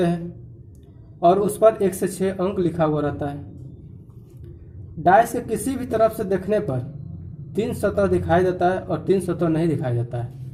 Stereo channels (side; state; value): both; identical; correlation 1.00